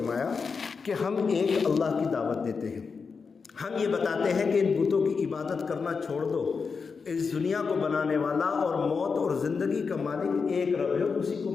کہ ہم ایک اللہ کی دعوت دیتے ہیں، ہم یہ بتاتے ہیں کہ ان بتوں کی عبادت کرنا چھوڑ دو، اس دنیا کو بنانے والا اور موت اور زندگی کا مالک ایک رب ہے، اسی کو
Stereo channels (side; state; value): right; quieter; 5.2 dB